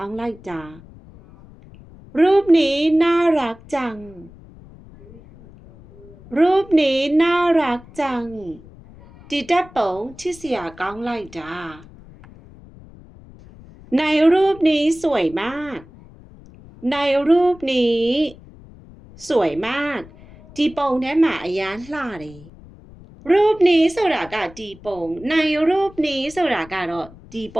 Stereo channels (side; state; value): left; noise; rumble, 21 dB below the sound